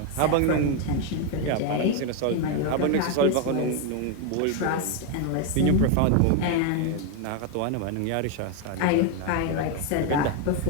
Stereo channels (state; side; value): different; both; correlation 0.01